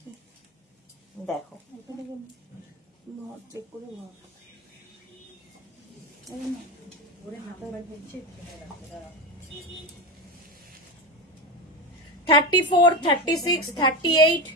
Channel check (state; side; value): normal; both; correlation 0.18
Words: দেখো চেক করে 34, 36, 38,